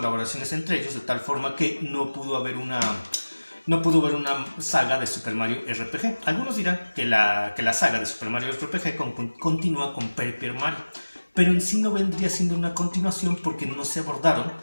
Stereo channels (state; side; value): inverted; both; correlation -1.00